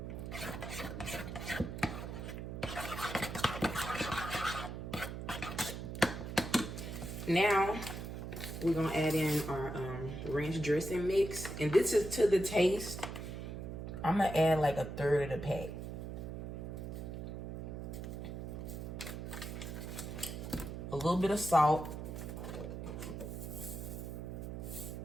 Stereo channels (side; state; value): right; noise; hum, 6 dB below the sound